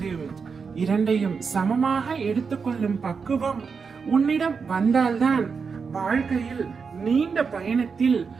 இரண்டையும் சமமாக எடுத்துக்கொள்ளும் பக்குவம் உன்னிடம் வந்தால்தான் வாழ்க்கையில் நீண்ட பயணத்தில்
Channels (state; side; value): quieter; left; 5.5 dB